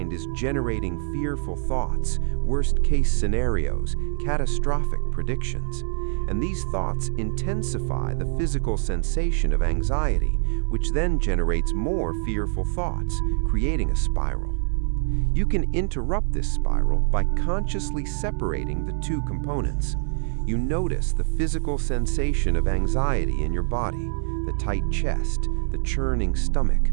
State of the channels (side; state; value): left; silent; digital silence